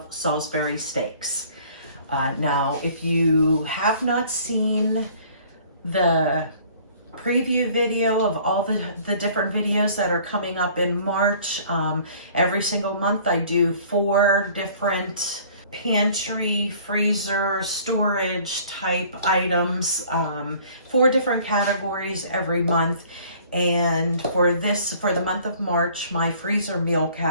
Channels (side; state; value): both; inverted; correlation -0.53